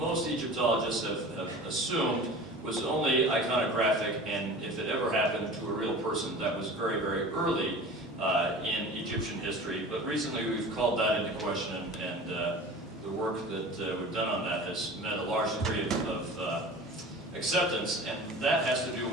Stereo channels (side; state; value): both; normal; correlation 0.38